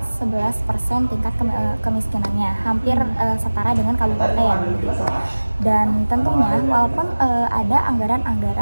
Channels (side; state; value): both; inverted; correlation -1.00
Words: 11% tingkat kemiskinannya, hampir setara dengan kabupaten gitu. Dan tentunya walaupun ada